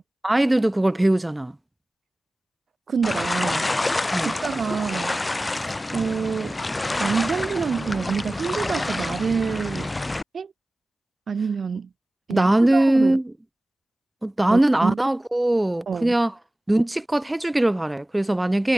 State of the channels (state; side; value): normal; both; correlation 0.97